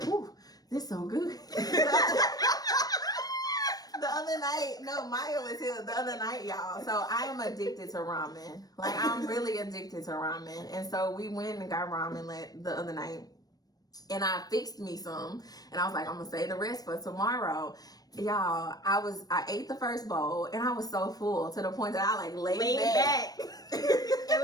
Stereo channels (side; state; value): right; late; 0.19 ms